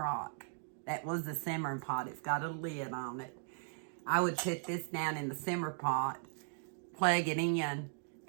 That was the simmering pot. It's got a lid on it. I would put this down in the simmer pot, plug it in,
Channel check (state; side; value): silent; left; digital silence